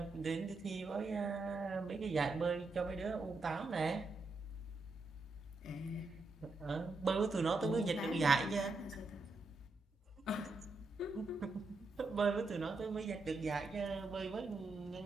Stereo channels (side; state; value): left; quieter; 3.4 dB